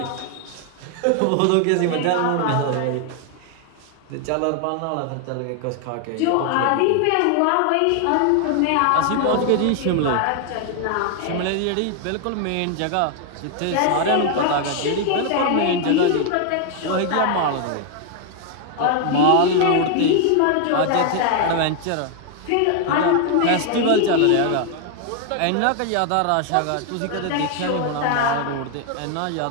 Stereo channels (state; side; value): different; both; correlation 0.00